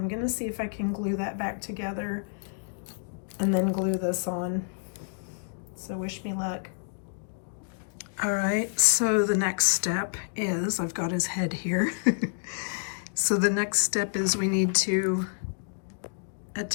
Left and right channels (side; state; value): right; silent; digital silence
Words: gonna see if I can glue that back together and then glue this on. So wish me luck. All right, so the next step is, I've got his head here. So the next step is we need to